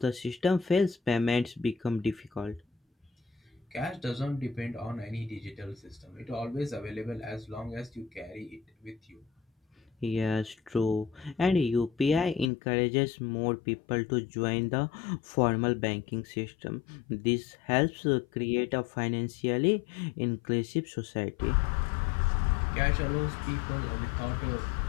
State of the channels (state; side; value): drops out; right; at 12.5 s